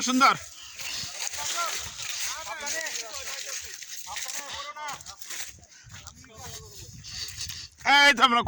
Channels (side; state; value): both; identical; correlation 1.00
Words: সুন্দর। এই তো আমরা